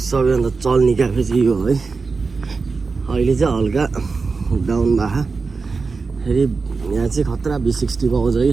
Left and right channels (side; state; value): left; quieter; 4.4 dB